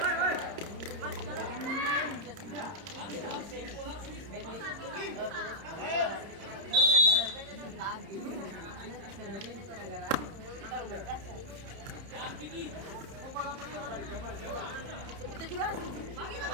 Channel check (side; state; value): left; late; 30 ms